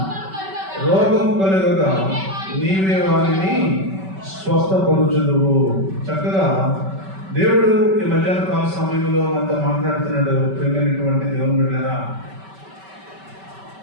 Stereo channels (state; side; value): late; left; 5.2 ms